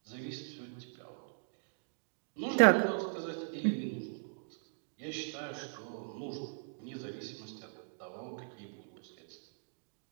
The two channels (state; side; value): silent; left; digital silence